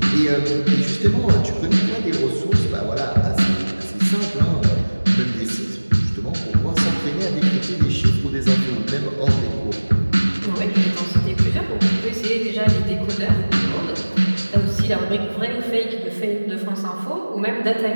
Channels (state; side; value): inverted; both; correlation -1.00